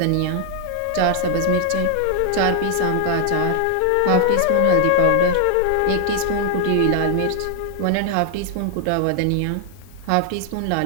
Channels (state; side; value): different; both; correlation 0.00